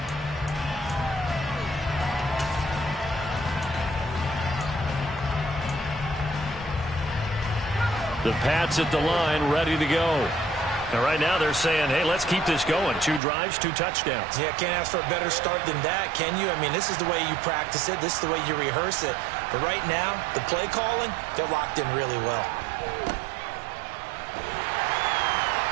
The Pats at the line, ready to go. And right now they're saying, hey, let's keep this going. 2 drives, 2 touchdowns. Yeah, can't ask for a better start than that, can you? I mean, this is the way you practice it. This is the way you rehearse it. But right now, the play calling, they're locked in really well.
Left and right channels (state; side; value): drops out; left; at 13.2 s